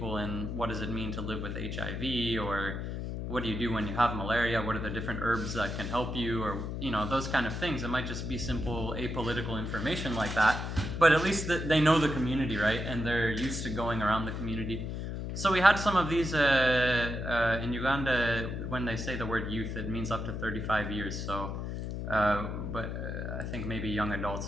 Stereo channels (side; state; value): left; noise; hum, 4 dB below the sound